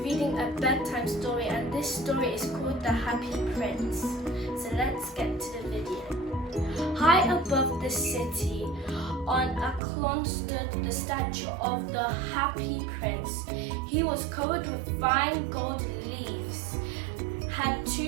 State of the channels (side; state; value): left; drops out; at 9.8 s